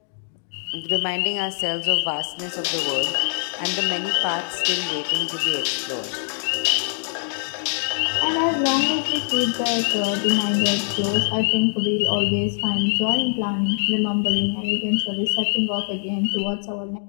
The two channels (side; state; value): right; silent; digital silence